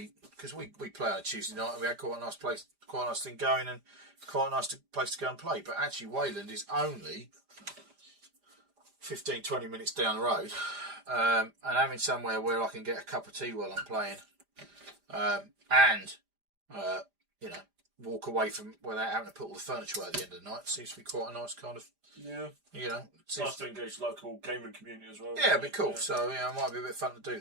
because we play on a Tuesday night, and we had quite a nice place, quite a nice thing going, and quite a nice place to go and play. But actually Wayland is only 15-20 minutes down the road, and having somewhere where I can get a cup of tea while I'm playing, and you know, walk away from without having to put all the furniture away at the end of the night seems to be quite a nice kind of. Yeah. You know, it's nice to engage the local gaming community as well. Yeah, it'd be cool. Yeah. So yeah, it might be a bit fun to do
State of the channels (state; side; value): late; left; 5.0 ms